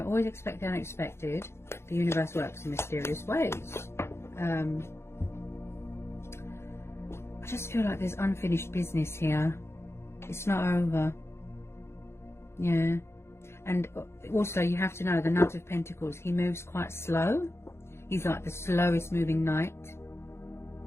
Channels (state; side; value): late; right; 0.12 ms